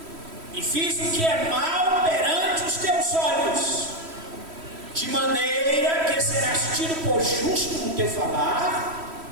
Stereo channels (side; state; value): left; late; 3.1 ms